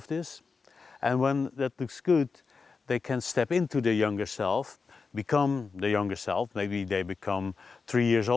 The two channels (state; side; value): quieter; right; 4.8 dB